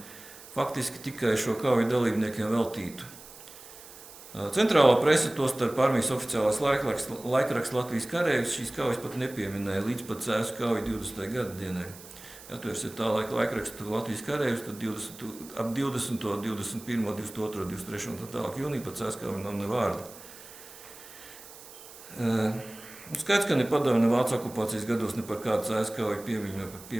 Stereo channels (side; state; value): right; noise; hiss, 18 dB below the sound